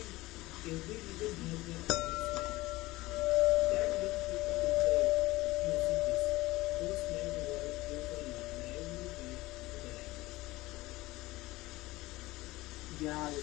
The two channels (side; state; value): right; quieter; 19.5 dB